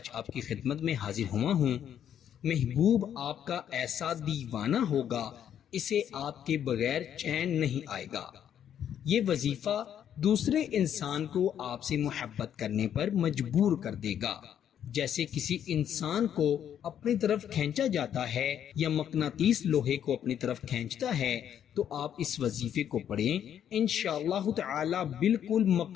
آپ کی خدمت میں حاضر ہوا ہوں۔ محبوب آپ کا ایسا دیوانہ ہوگا، اسے آپ کے بغیر چین نہیں آئے گا۔ یہ وظیفہ دوسرے انسان کو آپ سے محبت کرنے پر مجبور کر دے گا۔ جیسے کسی انسان کو اپنی طرف کھینچا جاتا ہے یا مقناطیس لوہے کو اپنی طرف کھینچتا ہے، تو آپ اس وظیفے کو پڑھیں، انشاءاللہ تعالی بالکل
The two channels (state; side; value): quieter; right; 9.5 dB